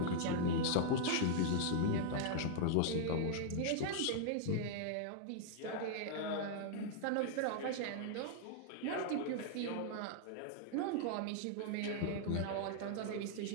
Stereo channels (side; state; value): both; different; correlation -0.01